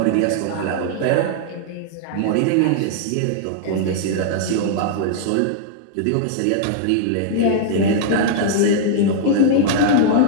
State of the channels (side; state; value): both; different; correlation -0.01